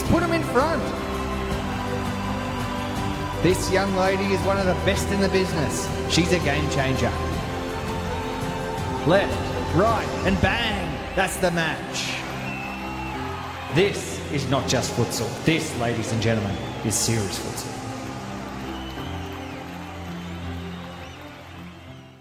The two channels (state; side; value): identical; both; correlation 1.00